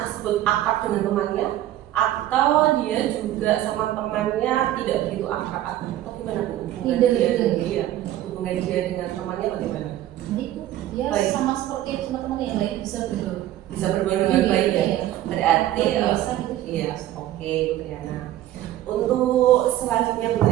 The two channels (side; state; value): left; quieter; 13.4 dB